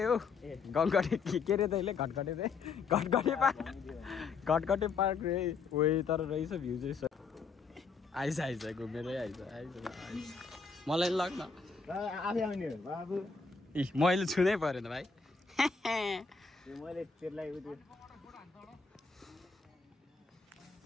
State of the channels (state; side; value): quieter; right; 4.9 dB